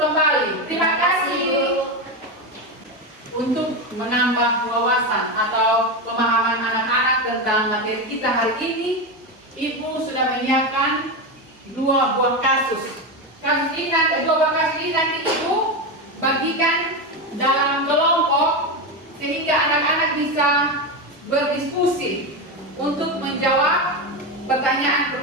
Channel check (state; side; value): normal; both; correlation 0.14